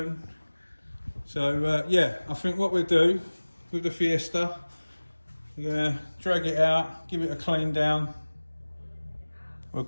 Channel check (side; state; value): both; inverted; correlation -1.00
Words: So yeah, I think what we'll do with the Fiesta, we're going to drag it out, give it a clean down. We'll